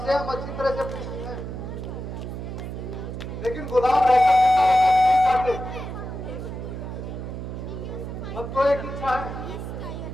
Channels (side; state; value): right; noise; hum, 7 dB below the sound